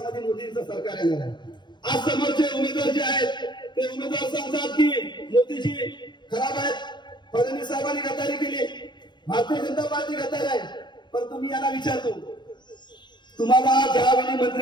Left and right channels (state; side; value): late; right; 0.22 ms